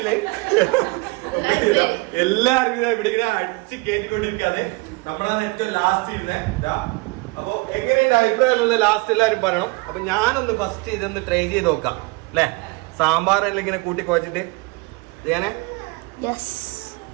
എല്ലാവർക്കും ഇവിടെ ഇങ്ങനെ അടിച്ച് കയറ്റിക്കൊണ്ടിരിക്കാതെ നമ്മളാണ് ഏറ്റവും ലാസ്റ്റ് ഇരുന്നേ. അപ്പൊ എങ്ങനെയുണ്ട് അഭിപ്രായമുള്ള ലാസ്റ്റ് എല്ലാവരും പറയണം. അപ്പൊ ഞാനൊന്ന് ഫസ്റ്റ് ഇതൊന്ന് ട്രൈ ചെയ്ത് നോക്കാം അല്ലെ. സാമ്പാറെല്ലാം ഇങ്ങനെ കൂട്ടി കുഴച്ചിട്ട് ചെയ്യാനേ.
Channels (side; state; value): left; quieter; 26.2 dB